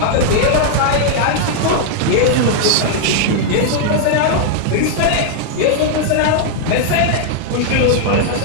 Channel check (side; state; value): both; different; correlation -0.01